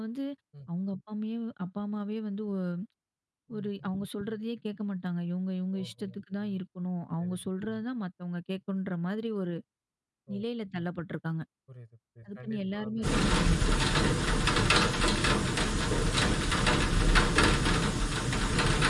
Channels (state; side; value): identical; both; correlation 1.00